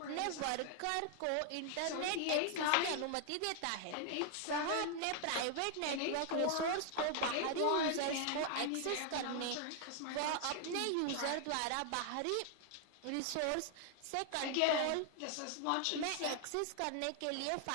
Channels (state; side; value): different; both; correlation 0.00